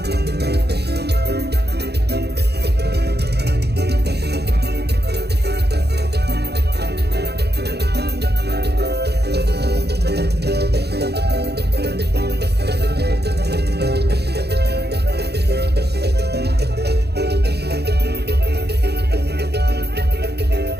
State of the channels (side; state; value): left; late; 0.48 ms